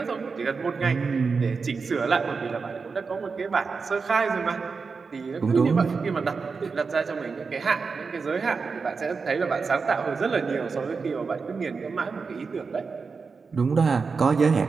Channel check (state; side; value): quieter; left; 4.9 dB